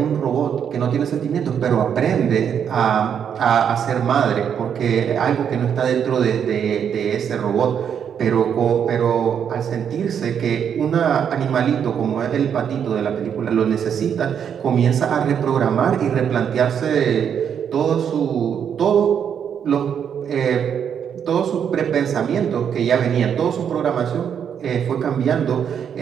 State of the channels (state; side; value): quieter; left; 8.1 dB